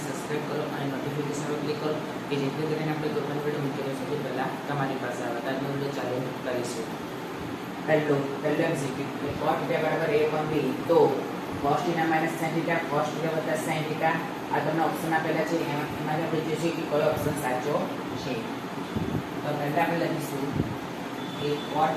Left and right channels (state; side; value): identical; both; correlation 1.00